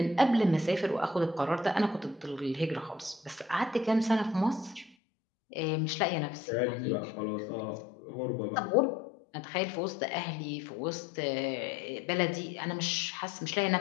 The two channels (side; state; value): right; drops out; at 5.0 s